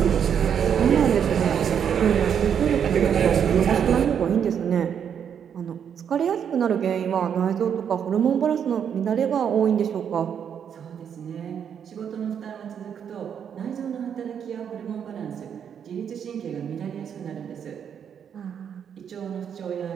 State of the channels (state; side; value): quieter; left; 8.1 dB